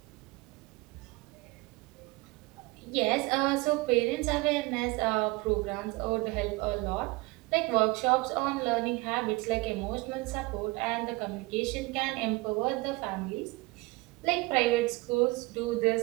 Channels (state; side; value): quieter; left; 23.6 dB